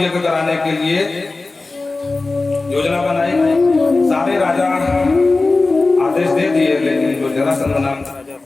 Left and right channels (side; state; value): right; quieter; 3.5 dB